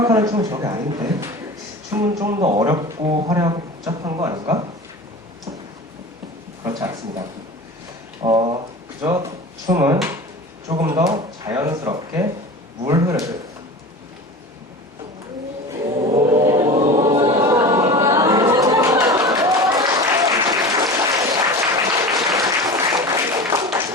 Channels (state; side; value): normal; both; correlation 0.33